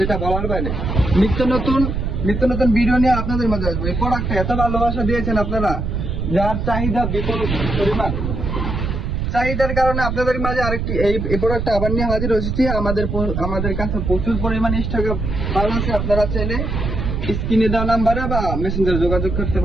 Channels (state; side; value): noise; right; rumble, 2 dB below the sound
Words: বলার বাইরে। নিত্য নতুন ভিডিও নিয়ে আপনাদের মাঝে আসবে। এই প্রোডাক্টটা এত ভালোবাসা দিয়েছেন আপনারা, যার চাহিদা বিপুল পরিমাণ। চাহিদার কারণে আপনাদের মাঝে আরেকটি এই প্রোডাক্টটা আবার নিয়ে হাজির হয়েছি। আমাদের কাছে প্রচুর পরিমাণে স্টকে মাল আছে। আপনারা চাইলে স্ক্রিনে দেওয়া নাম্বারে বা মেসেঞ্জারে যোগাযোগ করতে